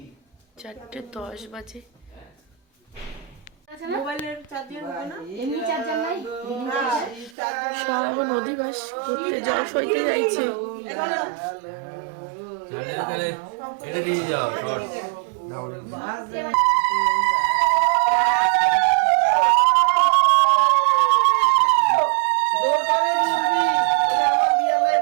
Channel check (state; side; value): drops out; left; at 7.4 s